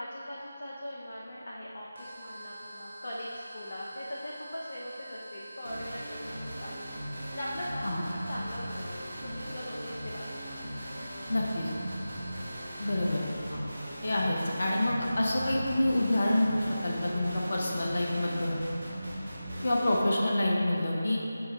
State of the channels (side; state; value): both; inverted; correlation -0.95